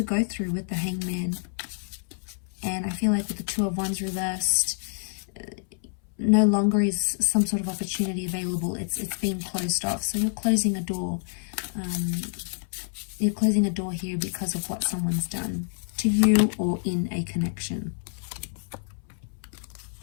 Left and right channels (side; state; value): right; silent; 60 dB below the other